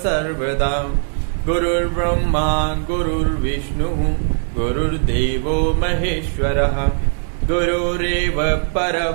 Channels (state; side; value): silent; left; 64 dB below the other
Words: गुरुर्ब्रह्मा गुरुर्विष्णुः गुरुर्देवो महेश्वरः गुरुरेव